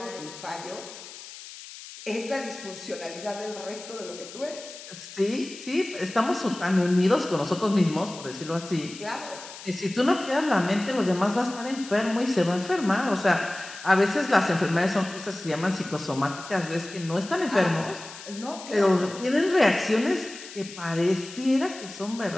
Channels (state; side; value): noise; left; hiss, 14 dB below the sound